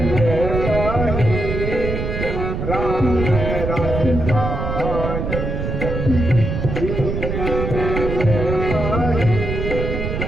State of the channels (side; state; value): right; noise; rumble, 3 dB below the sound